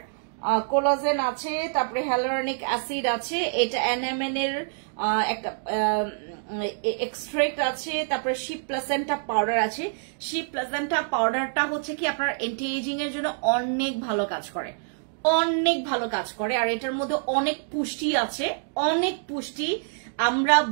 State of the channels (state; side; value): silent; left; digital silence